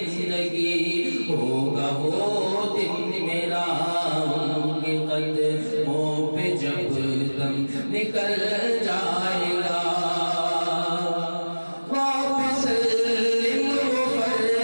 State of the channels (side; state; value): both; inverted; correlation -1.00